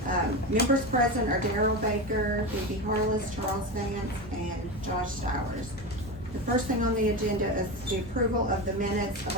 Members present are Darrell Baker, Phoebe Harless, Charles Vance, and Josh Stowers. The first thing on the agenda is the approval of the minutes of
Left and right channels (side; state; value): both; normal; correlation 0.21